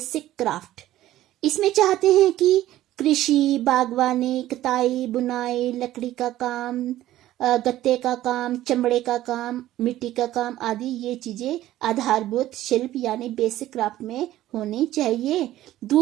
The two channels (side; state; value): left; quieter; 14.3 dB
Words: क्राफ्ट। इसमें चाहते हैं कि कृषि, बागवानी, कताई, बुनाई, लकड़ी का काम, गत्ते का काम, चमड़े का काम, मिट्टी का काम आदि ये चीजें आधारभूत शिल्प यानी बेसिक क्राफ्ट में होनी चाहिए।